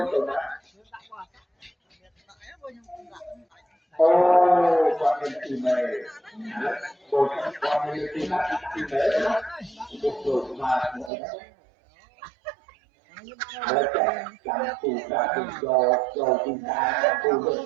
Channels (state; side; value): drops out; left; at 11.1 s